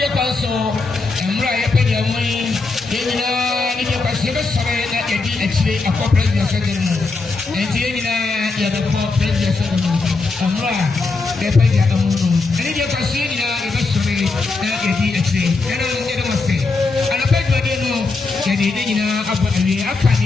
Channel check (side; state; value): right; quieter; 3.8 dB